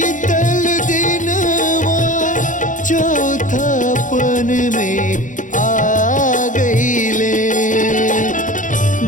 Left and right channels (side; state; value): right; late; 0.37 ms